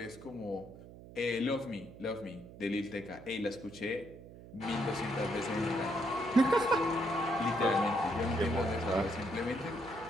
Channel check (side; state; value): right; noise; hum, 17 dB below the sound